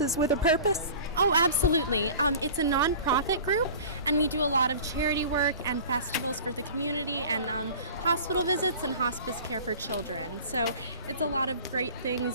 with a Purpose? Oh, absolutely. It's a nonprofit group, and we do a lot of charity work and festivals for the community and hospital visits and hospice care for children. So it's a lot of great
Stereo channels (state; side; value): inverted; both; correlation -0.40